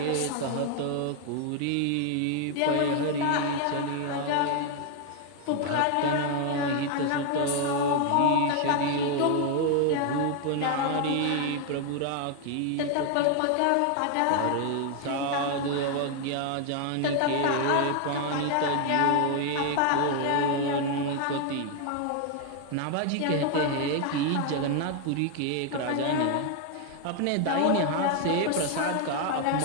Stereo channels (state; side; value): different; both; correlation 0.00